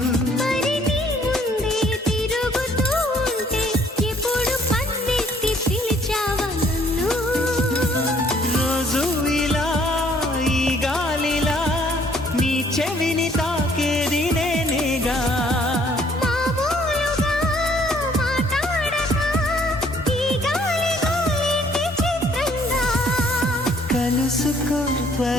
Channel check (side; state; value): both; normal; correlation 0.61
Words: రోజు ఇలా ఈ గాలిలా నీ చెవిని తాకేది నేనేగా కలుసుకో